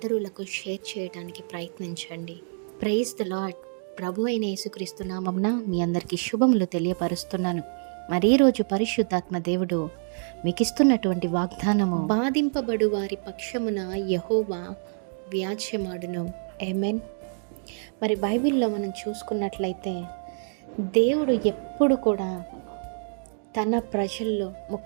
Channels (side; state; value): left; silent; 60 dB below the other